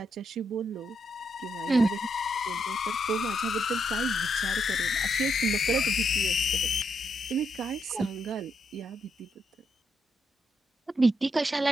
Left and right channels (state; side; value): normal; both; correlation 0.79